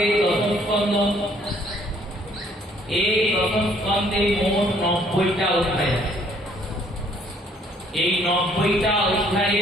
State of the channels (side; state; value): both; normal; correlation 0.63